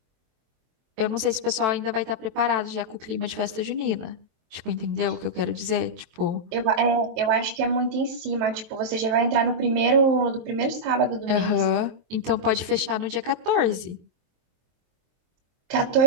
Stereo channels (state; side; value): late; left; 23 ms